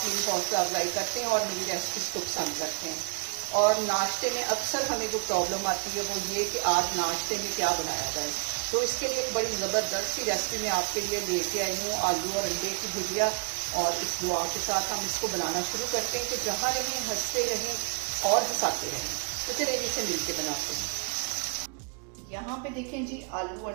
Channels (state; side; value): quieter; left; 35.2 dB